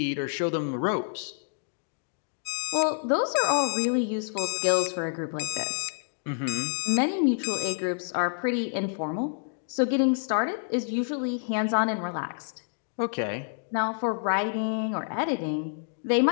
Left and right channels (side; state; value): right; silent; digital silence